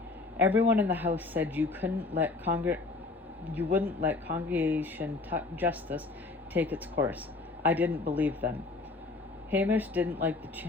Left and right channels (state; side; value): quieter; right; 3.6 dB